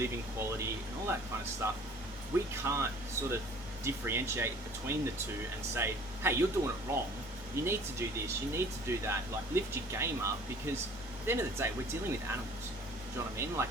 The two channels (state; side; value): normal; both; correlation 0.50